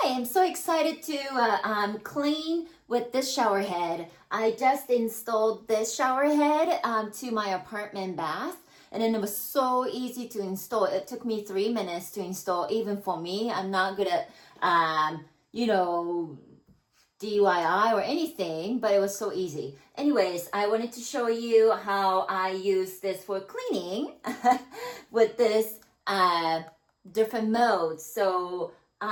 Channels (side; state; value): both; identical; correlation 1.00